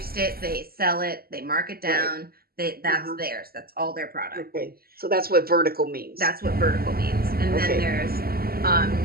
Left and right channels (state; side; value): late; left; 0.44 ms